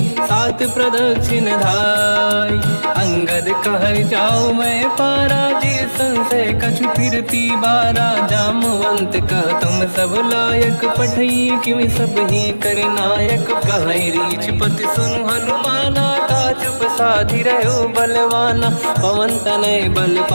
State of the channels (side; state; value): both; inverted; correlation -1.00